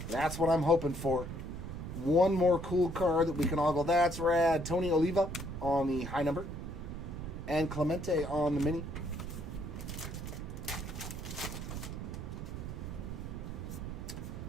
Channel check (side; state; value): right; noise; rumble, 7 dB below the sound